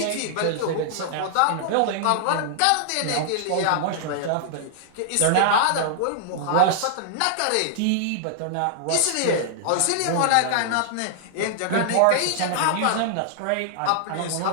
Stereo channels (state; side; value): different; both; correlation -0.01